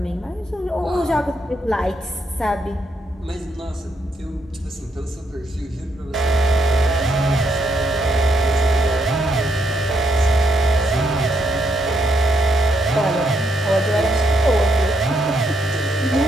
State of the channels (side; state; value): both; normal; correlation 0.76